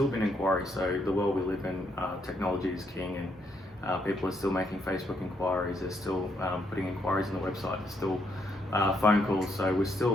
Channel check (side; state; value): both; normal; correlation 0.75